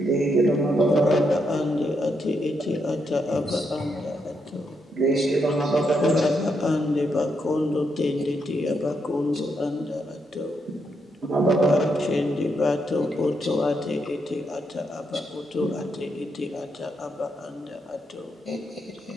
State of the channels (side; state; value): both; normal; correlation 0.80